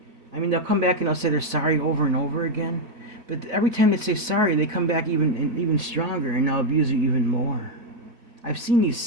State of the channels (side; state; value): left; late; 4.1 ms